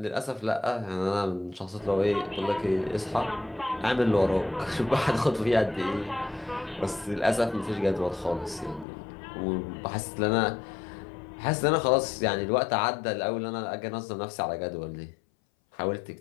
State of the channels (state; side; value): drops out; right; at 8.8 s